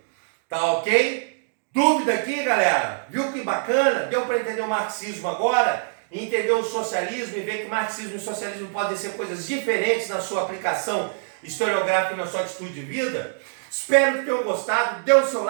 Tá ok? Dúvida aqui, galera? Viu que bacana? Deu para entender o marxismo agora? Entender o socialismo e ver que marxismo e socialismo podem ser coisas diferentes na sua aplicação historiográfica e na sua atitude de vida? Espero que tenham gostado. Dê o seu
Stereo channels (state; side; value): silent; left; digital silence